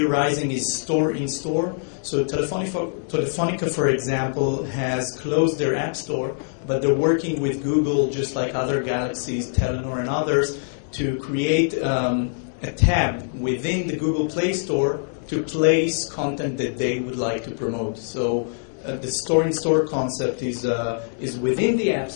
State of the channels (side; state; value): right; silent; digital silence